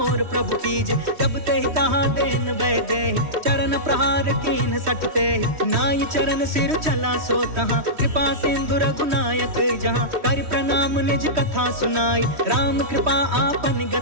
प्रभु कीजे। जब ते तहाँ देन वै दे चरण प्रहार कीन सटते। नाई चरण सिर चला सो तहाँ कृपा सिंधु रघुनायक जहाँ। कर प्रणाम निज कथा सुनाई राम कृपा आपन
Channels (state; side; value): late; left; 3.1 ms